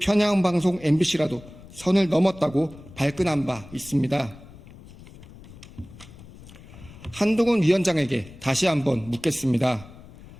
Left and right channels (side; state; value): left; noise; rumble, 19 dB below the sound